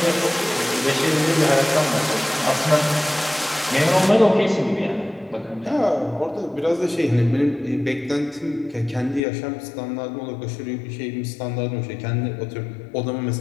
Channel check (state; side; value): drops out; right; at 9.2 s